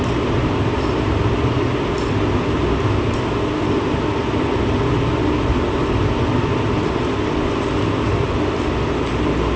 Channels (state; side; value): identical; both; correlation 1.00